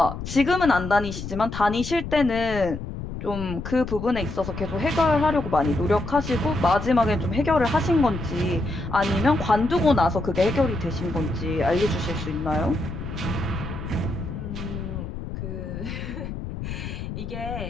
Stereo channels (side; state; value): left; noise; rumble, 7 dB below the sound